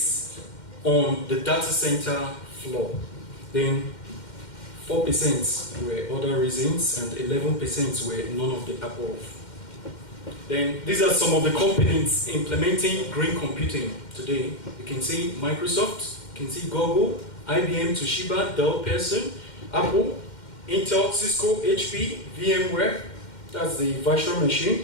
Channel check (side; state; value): right; late; 2.1 ms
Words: on the data center floor. Then 4% were other reasons and 11% were none of the above. Then these are some of the companies implementing green computing today. You can see Microsoft, you can see Google, IBM, Toshiba, Dell, Pearson, Apple, Intel, Cisco, HP, VMware, that's the virtual